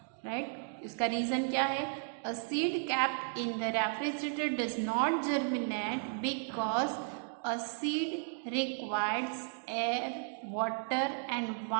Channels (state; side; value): silent; left; 55 dB below the other